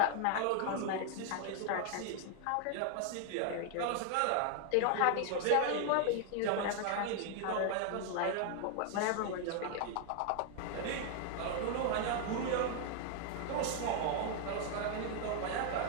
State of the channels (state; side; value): different; both; correlation 0.00